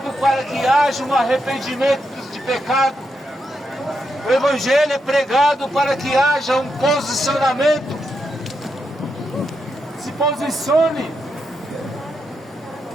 para que haja um arrependimento de pecado. O Evangelho é pregado para que haja um posicionamento. Se posicione,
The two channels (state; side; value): normal; both; correlation 0.83